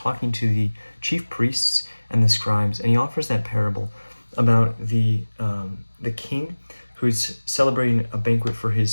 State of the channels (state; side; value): inverted; both; correlation -1.00